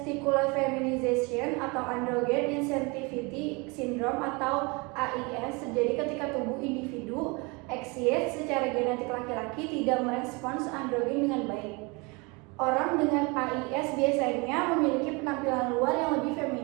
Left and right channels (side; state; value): left; quieter; 28.1 dB